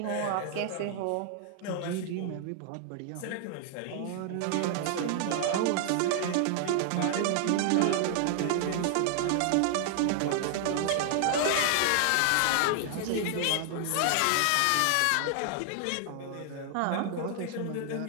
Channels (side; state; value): both; different; correlation 0.00